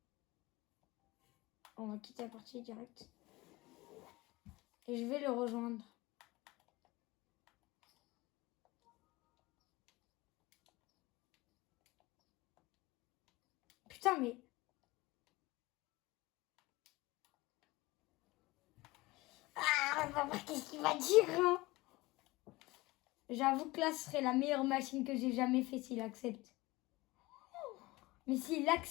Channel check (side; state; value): right; quieter; 21.0 dB